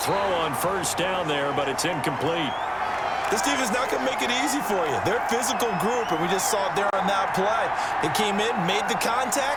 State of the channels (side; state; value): both; identical; correlation 1.00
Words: throw on first down there, but it's incomplete. This team is not going to make it easy for you. They're a physical group, and we just saw it there on that play. It came in, made the